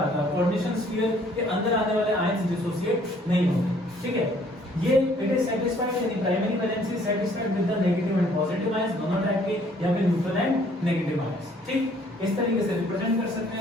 है, कोऑर्डिनेशन स्फीयर के अंदर आने वाले आयंस डिसोसिएट नहीं होते, ठीक है। ये इट इज सेटिस्फाइड, यानी primary valency satisfied with the negative and positive ions, दोनों टाइप के, या फिर न्यूट्रल एंड नेगेटिव आयंस, ठीक। इस तरीके से रिप्रेजेंट कर सकते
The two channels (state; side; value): normal; both; correlation 0.61